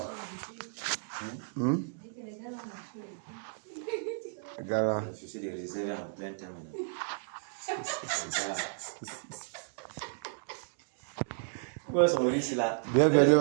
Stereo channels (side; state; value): left; silent; digital silence